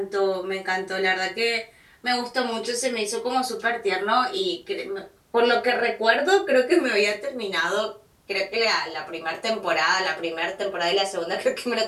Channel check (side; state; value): both; identical; correlation 1.00